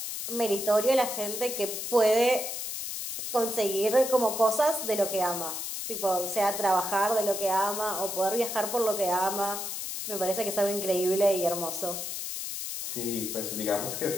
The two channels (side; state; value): left; noise; hiss, 5 dB below the sound